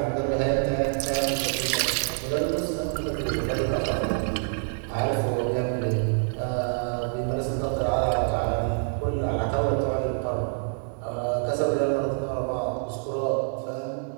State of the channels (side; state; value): left; silent; digital silence